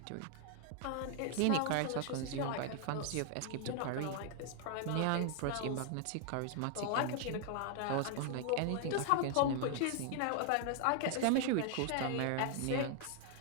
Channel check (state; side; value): different; both; correlation 0.00